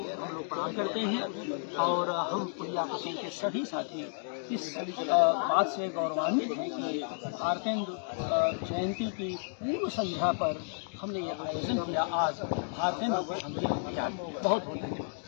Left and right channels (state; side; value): silent; right; digital silence